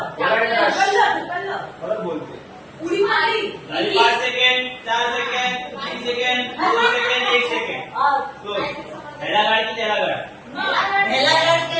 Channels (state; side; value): identical; both; correlation 1.00